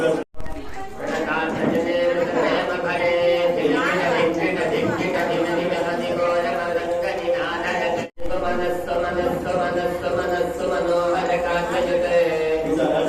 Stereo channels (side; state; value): both; identical; correlation 1.00